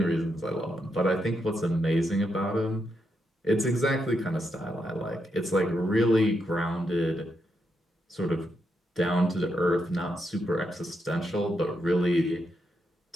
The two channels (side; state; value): both; normal; correlation 0.82